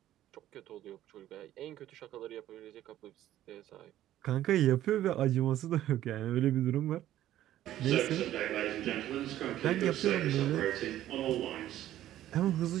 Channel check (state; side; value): quieter; left; 13.1 dB